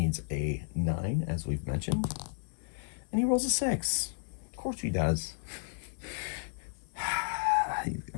a 9, as we've mentioned. And he rolls a 6. Of course he does.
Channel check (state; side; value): silent; right; 56 dB below the other